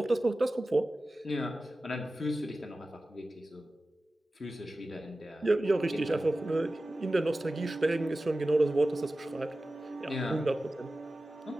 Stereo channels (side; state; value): both; normal; correlation 0.95